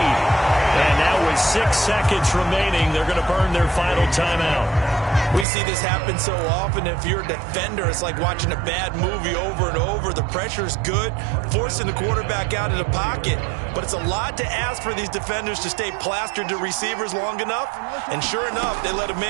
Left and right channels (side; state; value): left; drops out; at 5.5 s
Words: And now with 6 seconds remaining, they're going to burn their final timeout. We see this happen so often. If you're a defender, it's like watching a bad movie over and over. The pressure's good, forcing the quarterback out of the pocket. But it's a lot to ask for these defenders to stay plastered to receivers long enough. And sure enough, they let a